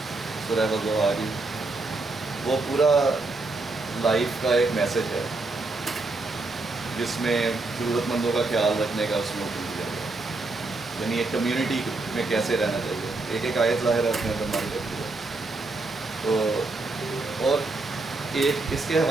سورہ والضحیٰ کی، وہ پورا لائف کا ایک میسج ہے جس میں ضرورت مندوں کا خیال رکھنے کا اس میں حکم دیا گیا. یعنی ایک کمیونٹی میں کیسے رہنا چاہیے. ایک ایک آیت ظاہر اپنے اندر مانی رکھتی ہے. تو اور ایک اس کے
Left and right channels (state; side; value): quieter; left; 3.3 dB